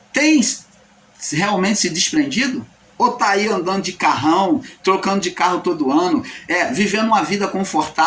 têm realmente se desprendido? Ou está aí andando de carrão, trocando de carro todo ano, vivendo uma vida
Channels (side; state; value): both; identical; correlation 1.00